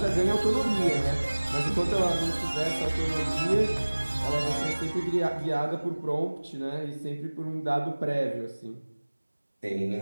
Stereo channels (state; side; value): inverted; both; correlation -1.00